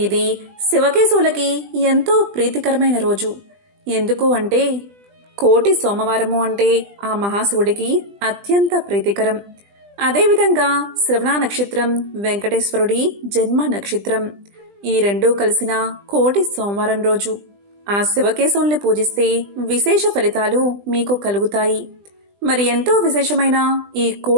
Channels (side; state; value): left; late; 20 ms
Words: ఇది శివకేశవులకి ఎంతో ప్రీతికరమైన రోజు. ఎందుకు అంటే కోటి సోమవారము అంటే ఆ మహాశివుడికి అత్యంత ప్రీతికరం. అదేవిధంగా శ్రవణ నక్షత్రం వెంకటేశ్వరుడి జన్మ నక్షత్రం. ఈ రెండూ కలిసిన కోటి సోమవారం రోజు ఆ శివకేశవుల్ని పూజిస్తే విశేష ఫలితాలు మీకు కలుగుతాయి. మరి ఎంతో విశేషమైన ఈ